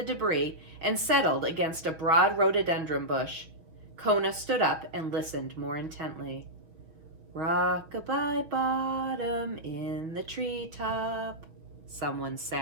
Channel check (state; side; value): late; left; 6.6 ms